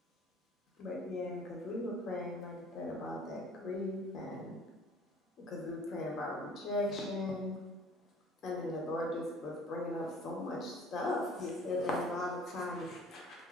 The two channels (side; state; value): both; normal; correlation 0.51